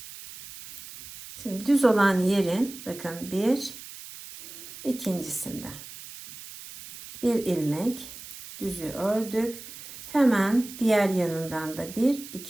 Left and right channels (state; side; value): noise; right; hiss, 14 dB below the sound